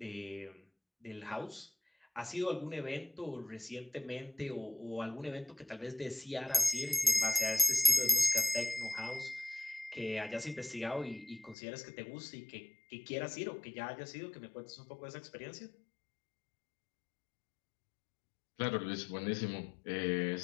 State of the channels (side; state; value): right; drops out; at 11.6 s